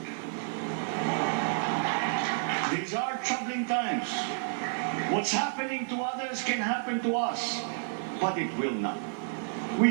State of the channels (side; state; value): left; silent; digital silence